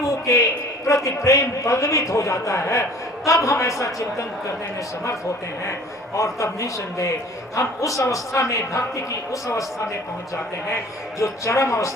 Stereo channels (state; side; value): normal; both; correlation 0.48